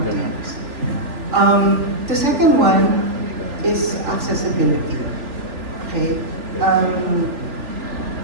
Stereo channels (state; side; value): late; left; 3.4 ms